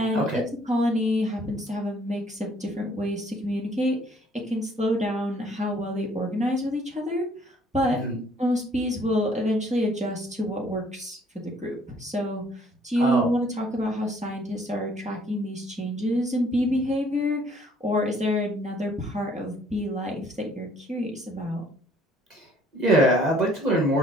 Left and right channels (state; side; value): normal; both; correlation 0.61